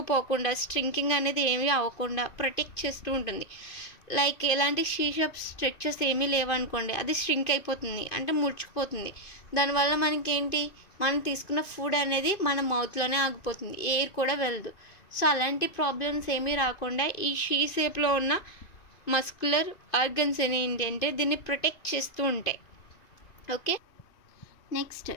స్ట్రింకింగ్ అనేది ఏమీ అవ్వకుండా ప్రొటెక్ట్ చేస్తూ ఉంటుంది. లైక్ ఎలాంటి షేప్ స్ట్రక్చర్స్ ఏమీ లేవనుకోండి, అది స్ట్రింక్ అయిపోతుంది, అంటే ముడుచుకుపోతుంది. దానివల్ల మనకేంటి, మనం తీసుకున్న ఫుడ్ అనేది మన మౌత్లోనే ఆగిపోతుంది, ఎయిర్ కూడా వెళ్ళదు. సో అలాంటి ప్రాబ్లమ్స్ ఏమీ రాకుండా ఈ షేప్లో ఉన్న మస్కులర్ ఆర్గన్స్ ఏంటి అంటే దీన్ని ప్రొటెక్ట్ చేస్తూ ఉంటాయి. ఓకే, నెక్స్ట్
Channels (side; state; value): right; late; 2.5 ms